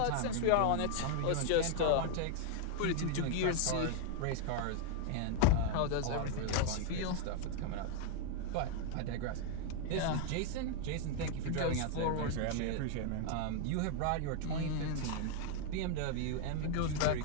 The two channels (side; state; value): both; different; correlation 0.00